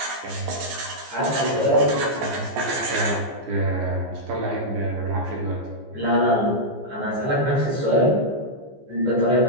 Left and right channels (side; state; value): left; late; 14 ms